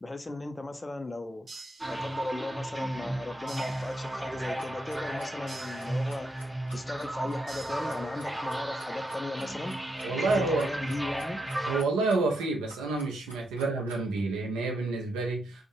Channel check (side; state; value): both; normal; correlation 0.81